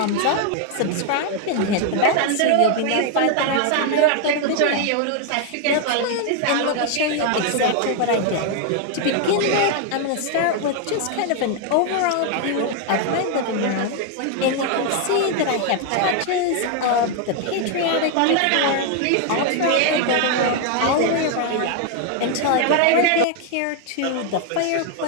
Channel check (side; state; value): both; different; correlation 0.01